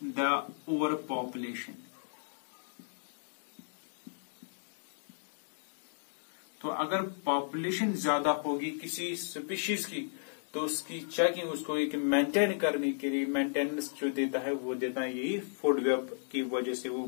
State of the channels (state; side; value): silent; right; digital silence